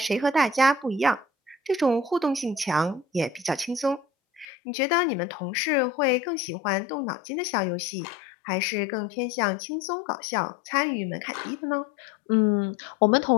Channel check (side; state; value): right; drops out; at 4.5 s